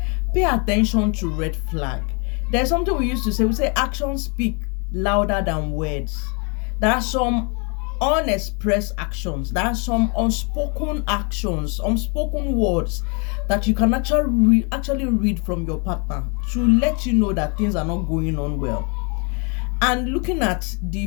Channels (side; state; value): right; quieter; 34.7 dB